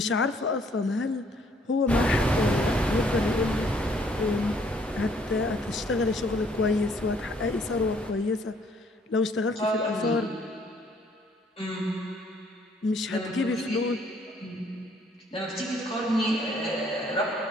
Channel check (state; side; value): normal; both; correlation 0.63